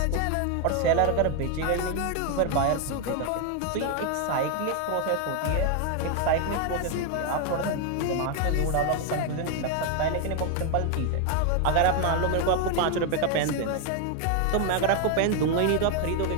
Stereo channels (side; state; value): both; different; correlation 0.01